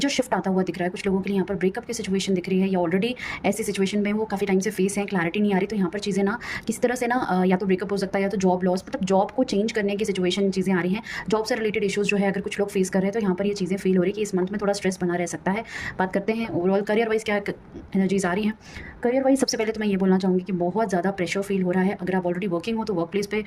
शिफ्ट आता हुआ दिख रहा है, कुछ लोगों के लिए यहाँ पर ब्रेकअप की सिचुएशन दिख रही है या ऑलरेडी ऐसी सिचुएशन में वो काफ़ी टाइम से फेस हैं, क्लैरिटी नहीं आ रही। तो यहाँ पर चीज़ें ना किसी तरह से ना या तो ब्रेकअप हो सकता है या तो जॉब लॉस, मतलब जॉब को चेंज करने की सिचुएशन चीज़ें आ रही हैं। जॉब से रिलेटेड इश्यूज़ जो है अगर कुछ लोग फेस कर रहे हैं तो यहाँ पर ये चीज़ें फील हो रही है कि इस मंथ में थोड़ा स्ट्रेस बना रह सकता है। बात करते हैं ओवरऑल करियर वाइज़ क्या एनर्जीज़ आ रही हैं। करियर वाइज़ सबसे पहले तो मैं ये बोलना चाहूँगी कि बहुत ज़्यादा प्रेशर फील हो रहा है। अगर आप ऑलरेडी वर्किंग हो तो वर्क प्लेस पे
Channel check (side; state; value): both; identical; correlation 1.00